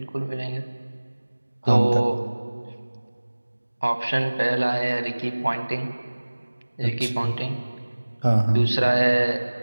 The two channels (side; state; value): both; inverted; correlation -1.00